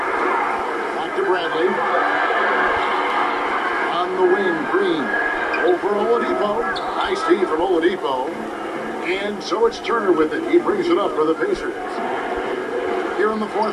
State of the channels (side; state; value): both; identical; correlation 1.00